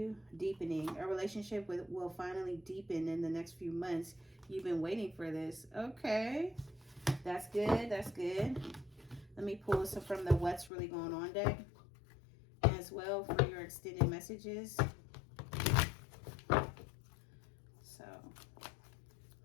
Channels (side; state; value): right; drops out; at 10.7 s